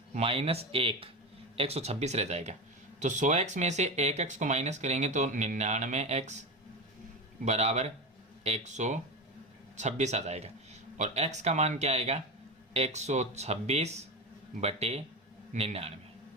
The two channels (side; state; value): both; normal; correlation 0.21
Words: माइनस 1 126 रह जाएगा। तो 100x में से 1x को माइनस करेंगे तो 99x बराबर 126 आ जाएगा, और x का मान क्या आएगा? 126/99।